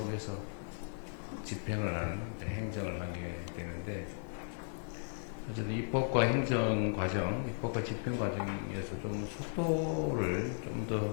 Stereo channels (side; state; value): right; silent; digital silence